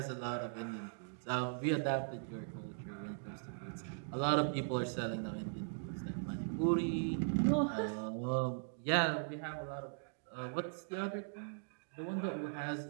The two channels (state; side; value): silent; left; digital silence